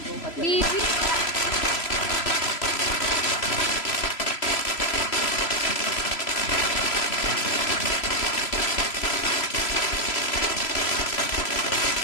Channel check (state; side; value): late; right; 3.0 ms